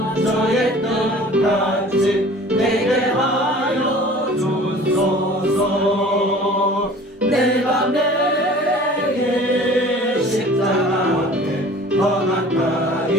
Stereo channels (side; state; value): both; normal; correlation 0.46